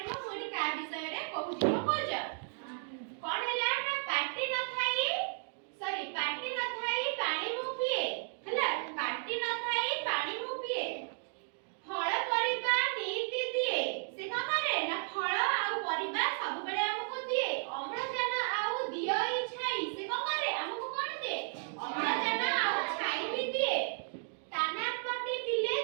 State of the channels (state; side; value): silent; left; 55 dB below the other